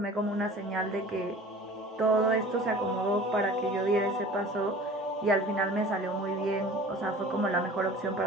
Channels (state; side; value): normal; both; correlation 0.43